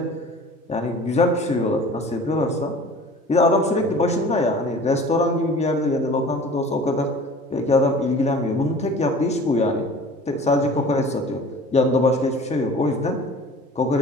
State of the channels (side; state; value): both; normal; correlation 0.44